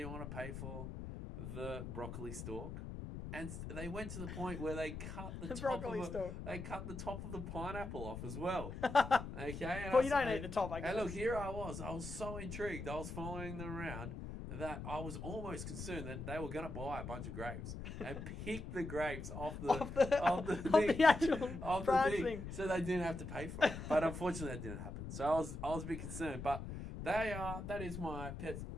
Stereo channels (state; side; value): noise; left; rumble, 8 dB below the sound